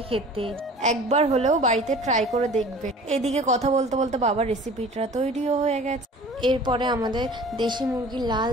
খেতে, একবার হলেও বাড়িতে ট্রাই করে দেখবে। এদিকে কথা বলতে বলতে বাবার রেসিপিটা তৈরিও হয়ে গেছে। এরপরে আমাদের দেশি মুরগির লাল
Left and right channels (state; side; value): normal; both; correlation 0.44